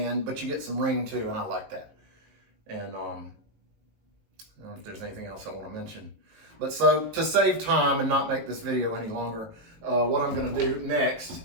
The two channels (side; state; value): left; late; 19 ms